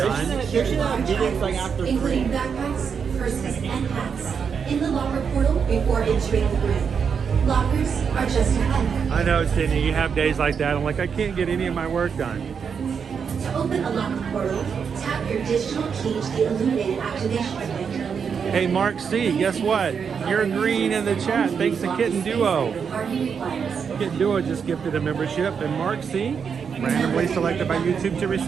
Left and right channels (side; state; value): left; quieter; 6.6 dB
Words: They should have meetings like after 3. Including backpacks, purses, and hats in the locker portal before entering the grid. Lockers are just ahead. I know, Sydney, you have days like that. I'm like, I can't get any of my work done. To open a locker portal, tap your digital key to the illuminated activation link. Hey, Mark C, guess what? You're green in the chat. Thanks to Kitten Duo. Kitten Duo just gifted a membership, and Mark C, randomly selected by YouTube to